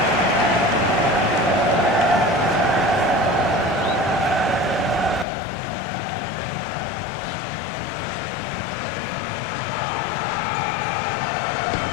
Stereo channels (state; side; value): drops out; right; at 5.2 s